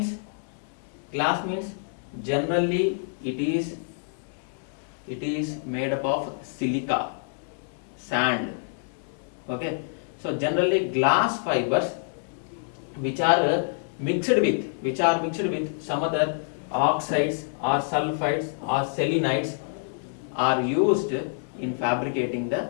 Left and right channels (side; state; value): right; silent; digital silence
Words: generally it is made up of silica, sand. Okay, so generally glass fibers which are mixed with some other oxides or sulfides or selenides are used in fabricating the